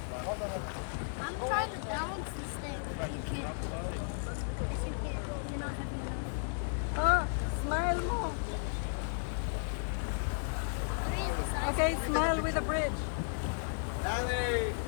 I'm trying to balance this thing. Ah, smile mo. Okay, smile with a bridge.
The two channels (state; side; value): silent; right; 55 dB below the other